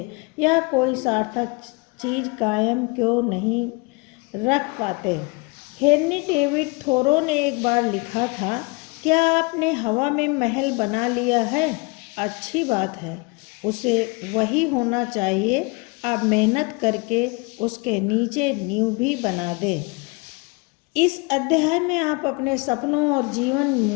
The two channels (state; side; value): quieter; right; 28.3 dB